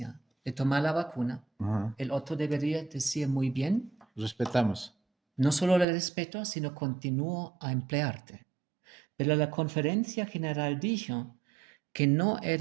de tomar la vacuna, el otro debería decir muy bien. Respetamos. No solo le respeto, sino continúo a emplearte. Pero la Conferencia General dijo que no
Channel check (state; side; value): drops out; left; at 5.9 s